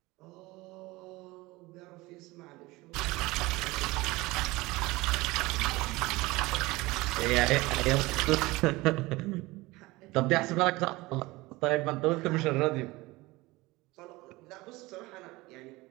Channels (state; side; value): quieter; left; 21.1 dB